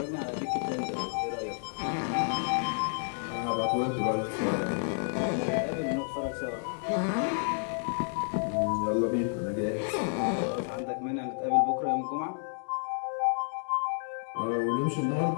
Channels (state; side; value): silent; right; 58 dB below the other